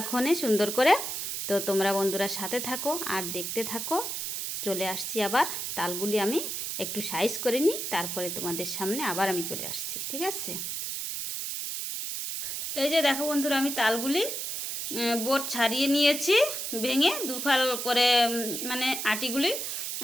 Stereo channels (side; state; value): right; noise; hiss, 4 dB below the sound